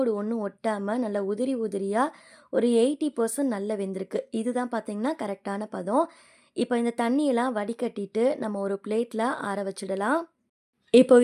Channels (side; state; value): both; identical; correlation 1.00